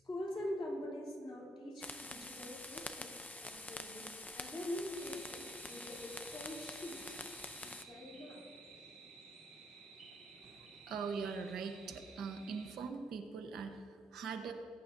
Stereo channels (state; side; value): normal; both; correlation 0.70